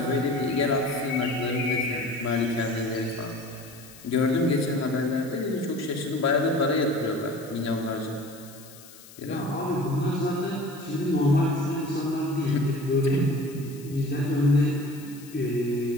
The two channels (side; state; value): left; noise; hiss, 20 dB below the sound